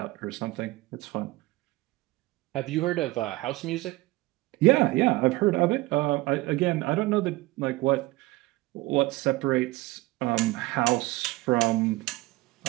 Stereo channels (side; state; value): left; quieter; 20.3 dB